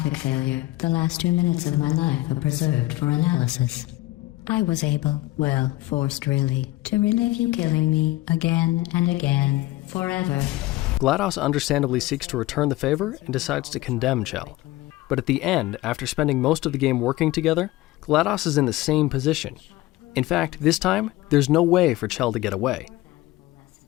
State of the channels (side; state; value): right; quieter; 17.8 dB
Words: failure, the last 2 minutes of my life are preserved for analysis. I was able, well, forced really, to relive you killing me again and again, forever. GLaDOS understandably seeks to return the favor and decides to condemn Chell. But at the end, after spending most of the game working together, GLaDOS is in the same position. In fact, this time, there's no way for Chell to get away.